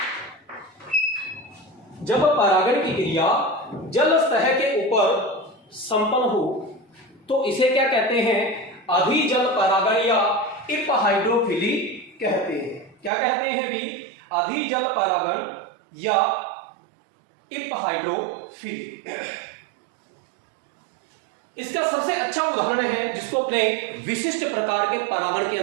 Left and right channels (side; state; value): left; drops out; at 13.1 s